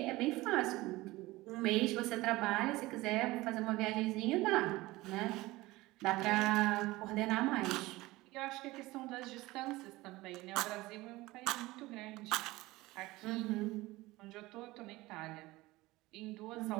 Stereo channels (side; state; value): left; quieter; 19.7 dB